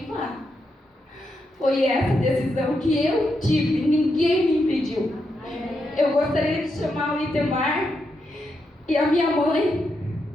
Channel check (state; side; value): normal; both; correlation 0.83